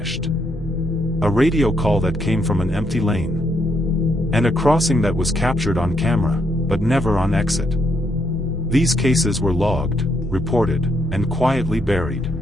A radio call that came from an empty lane. And a crossing that was captured on camera, but never on exit. These cases were logged, reported, and quietly buried.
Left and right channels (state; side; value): normal; both; correlation 0.76